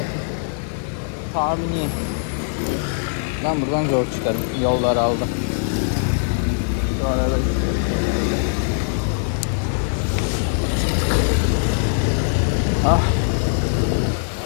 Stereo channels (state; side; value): silent; right; digital silence